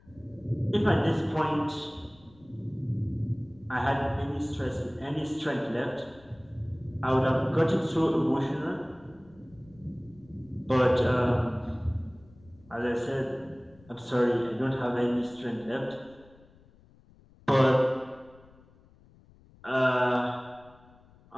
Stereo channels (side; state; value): left; noise; rumble, 27 dB below the sound